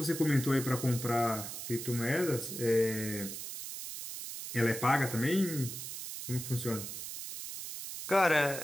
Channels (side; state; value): right; noise; hiss, 8 dB below the sound